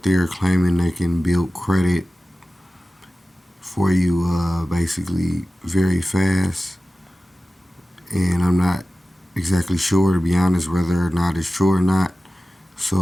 there claiming they can build credit for you basically very fast. And I'm not exactly sure, to be honest, whether or not it's true or not.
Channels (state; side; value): normal; both; correlation 0.96